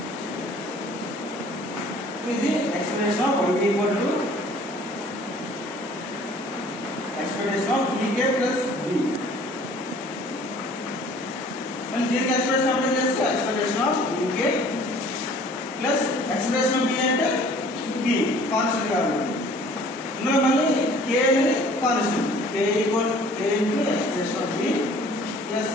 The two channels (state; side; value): normal; both; correlation 0.52